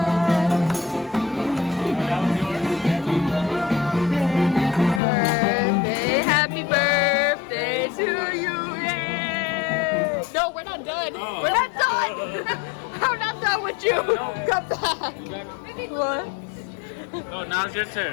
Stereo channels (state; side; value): drops out; right; at 5.0 s